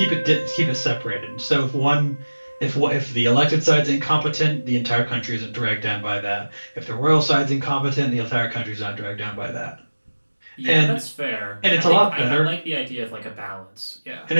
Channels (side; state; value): both; inverted; correlation -1.00